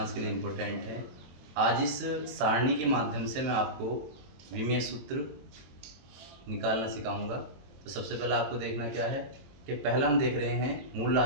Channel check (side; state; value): left; late; 23 ms